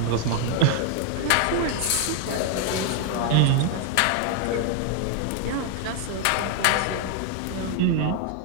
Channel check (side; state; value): both; different; correlation 0.00